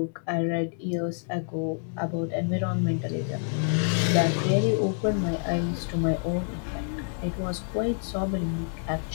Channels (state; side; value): silent; right; 60 dB below the other